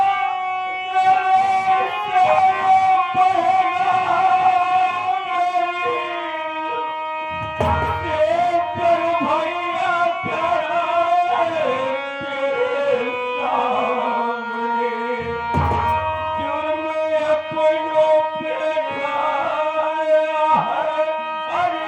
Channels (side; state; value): both; identical; correlation 1.00